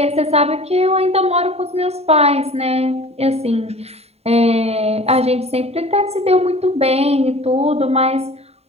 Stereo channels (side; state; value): left; late; 0.30 ms